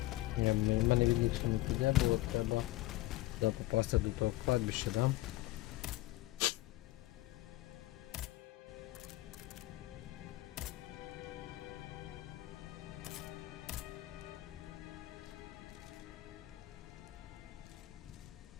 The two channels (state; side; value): quieter; right; 17.5 dB